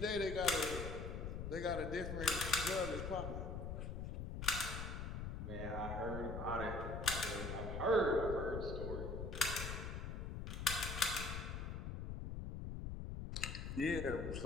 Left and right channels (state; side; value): noise; left; rumble, 4 dB below the sound